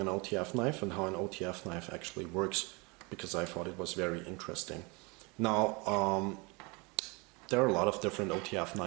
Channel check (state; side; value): quieter; left; 28.4 dB